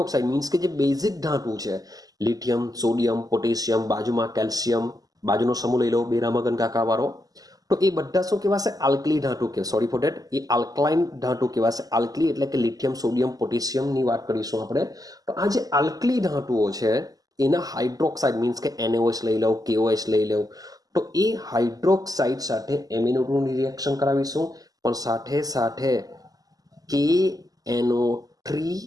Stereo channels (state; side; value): late; left; 0.17 ms